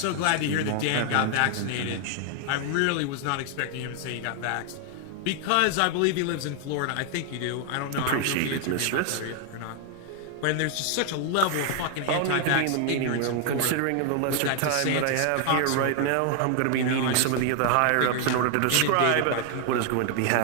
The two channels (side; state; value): both; different; correlation 0.00